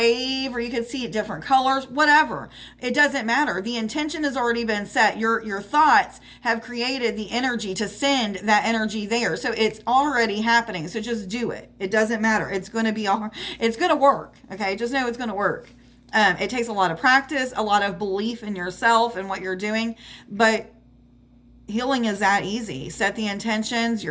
or you could see it different colors, whatever. It doesn't matter. The intention has already been set. Your thoughts have created the energy to send that energy there. So it's already happening. So just do it. It doesn't matter. It's going to work. Okay. Just know it's going to work. It takes a lot of practice, a lot of belief in yourself and what you're doing, but healing is that easy. Set the intentions,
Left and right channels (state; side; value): identical; both; correlation 1.00